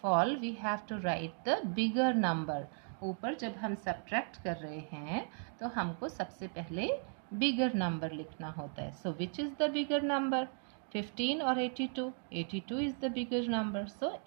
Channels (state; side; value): silent; left; 53 dB below the other